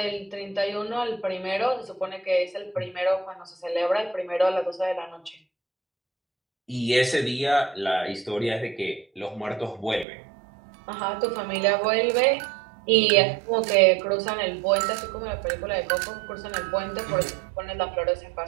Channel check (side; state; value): left; drops out; at 10.1 s